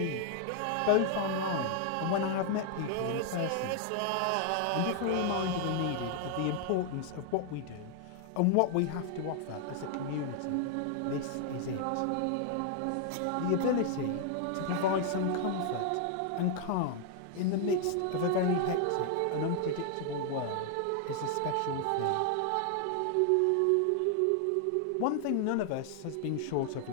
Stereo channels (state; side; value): different; both; correlation 0.00